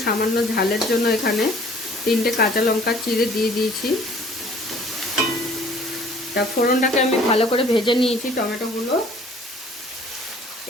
সামান্য ঝালের জন্য এখানে 3টে কাঁচা লঙ্কা চিড়ে দিয়ে দিয়েছি। তা ফোড়নটাকে আমি ভালো করে ভেজে নিয়েছি টমেটোগুলো।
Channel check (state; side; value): normal; both; correlation 0.53